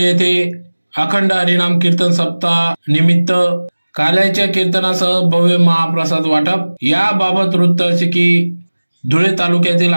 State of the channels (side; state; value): both; inverted; correlation -1.00